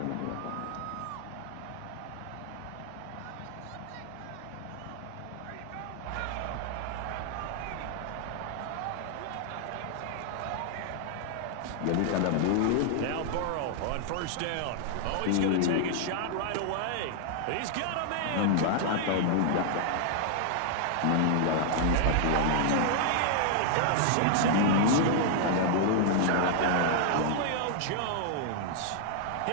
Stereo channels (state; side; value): different; both; correlation -0.01